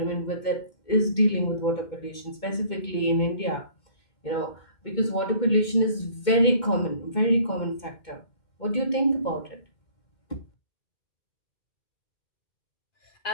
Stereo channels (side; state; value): right; late; 2.1 ms